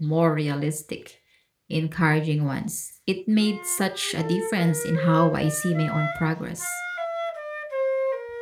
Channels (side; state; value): both; identical; correlation 1.00